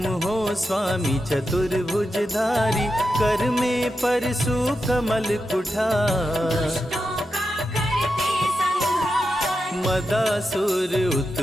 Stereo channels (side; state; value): both; normal; correlation 0.88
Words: हो स्वामी चतुर्भुजधारी। कर में परशु कमल कुठार, दुष्टों का करते संहार। मदासुर